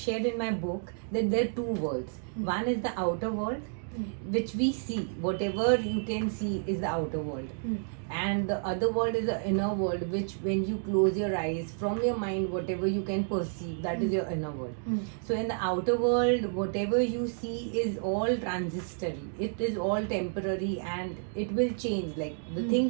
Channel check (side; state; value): left; silent; digital silence